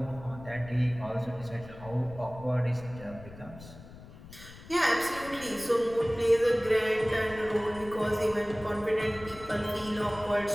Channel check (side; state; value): left; noise; rumble, 17 dB below the sound